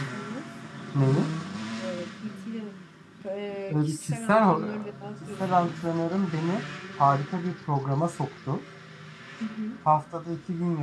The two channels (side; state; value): both; identical; correlation 1.00